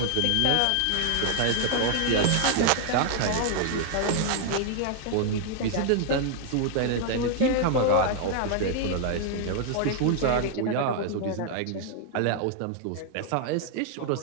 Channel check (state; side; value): different; both; correlation 0.00